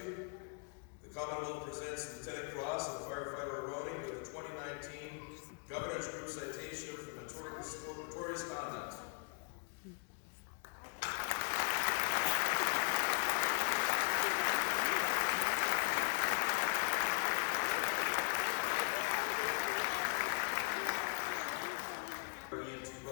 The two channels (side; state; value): right; quieter; 38.3 dB